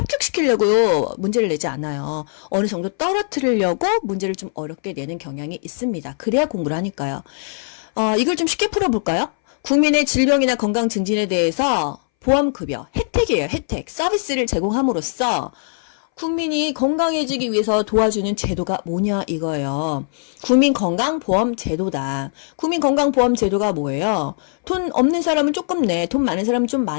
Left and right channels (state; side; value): silent; right; 63 dB below the other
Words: 문제를 내지 않아요. 어느 정도 떨어뜨리려고 문제를 좀 어렵게 내는 경향이 있습니다. 그래야 공부를 하니까요. 이걸 좀 쉽게 풀어볼까요? 국민의 질병이나 건강 증진에 대해서 보험급여, 혜택이에요, 혜택. 서비스를 제공함으로써 국민이 건강해지기 위해서 도와주는 제도가 뭐냐 이거예요. 국민건강보험제도다. 국민건강보험제도가 뭐예요? 돈 없는 사람은 조금 내, 돈 많은 사람은 좀